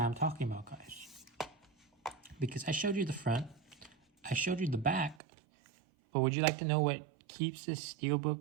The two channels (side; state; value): left; drops out; at 5.2 s